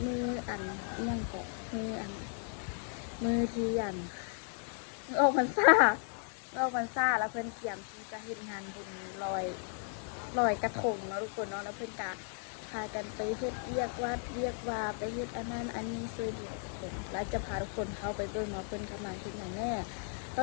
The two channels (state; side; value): silent; right; 54 dB below the other